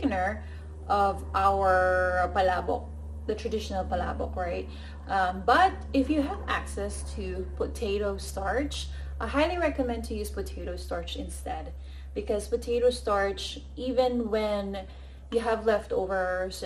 of our palabok, the traditional palabok, right? But if you have access to potato starch, I highly recommend to use potato starch instead, because potato starch, even when you have leftovers,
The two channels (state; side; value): identical; both; correlation 1.00